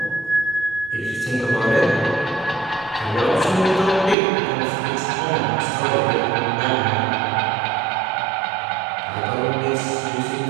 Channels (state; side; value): drops out; left; at 4.2 s